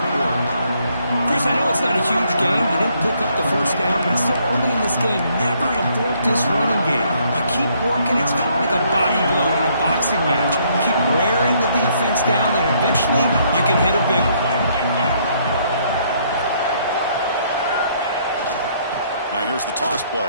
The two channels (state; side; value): inverted; both; correlation -0.68